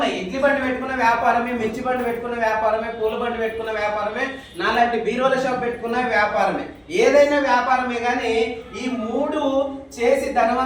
ఇడ్లీ బండి పెట్టుకున్న వ్యాపారమే, మిర్చి బండి పెట్టుకున్న వ్యాపారమే, పూల బండి పెట్టుకున్న వ్యాపారమే, నాలాంటి బీరోల షాప్ పెట్టుకున్న వ్యాపారమే. ఏదైనా వ్యాపారమే. కానీ ఈ మూడు చేసి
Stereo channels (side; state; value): both; identical; correlation 1.00